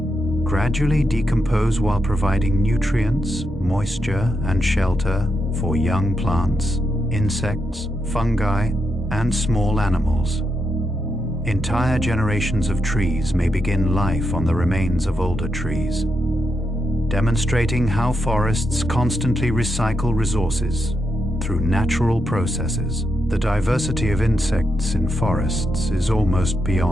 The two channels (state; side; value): noise; left; hum, 30 dB below the sound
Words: gradually decompose while providing nutrients, moisture, and shelter for young plants, insects, fungi, and small animals. Entire generations of trees may begin life on the remains of older trees, demonstrating how forests constantly recycle resources through natural processes. The diversity of insects in forests is almost